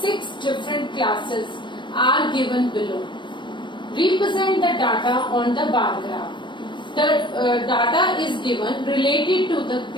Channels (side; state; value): right; late; 0.23 ms